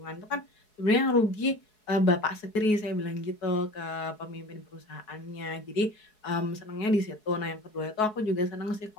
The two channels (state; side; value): late; right; 4.7 ms